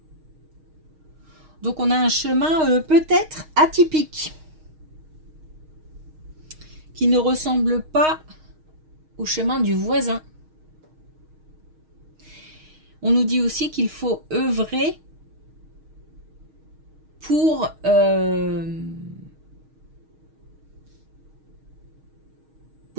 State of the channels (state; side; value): late; left; 6.4 ms